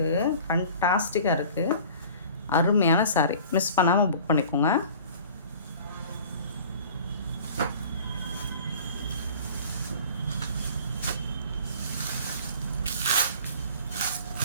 ஃபண்டாஸ்டிக்காக இருக்குது. அருமையான சாரீ, மிஸ் பண்ணாமல் புக் பண்ணிக்கோங்க.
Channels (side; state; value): both; inverted; correlation -0.45